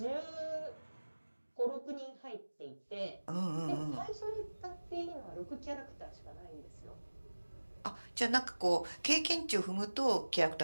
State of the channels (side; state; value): both; inverted; correlation -1.00